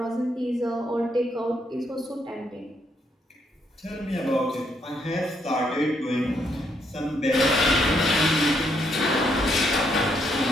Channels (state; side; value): normal; both; correlation 0.74